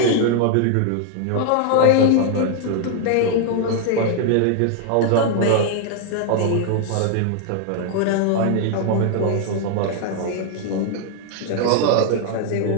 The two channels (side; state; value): both; different; correlation 0.00